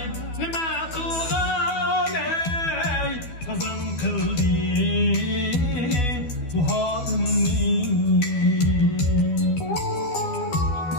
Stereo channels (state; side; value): late; right; 12 ms